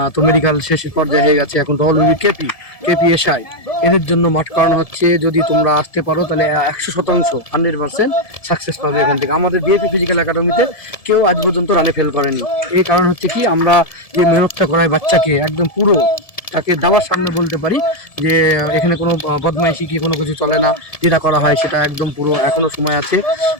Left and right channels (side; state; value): right; late; 1.7 ms